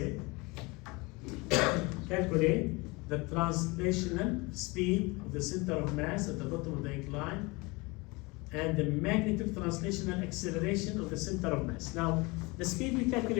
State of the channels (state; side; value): quieter; right; 25.5 dB